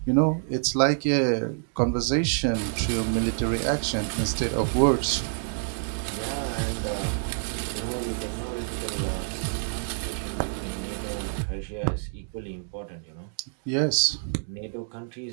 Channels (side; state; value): left; silent; digital silence